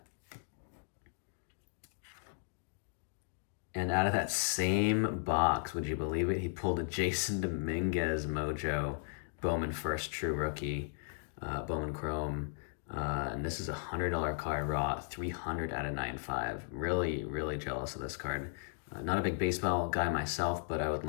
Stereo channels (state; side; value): silent; right; digital silence